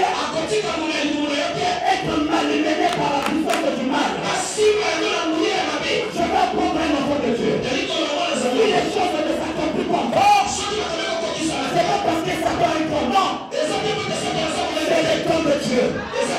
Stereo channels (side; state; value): both; identical; correlation 1.00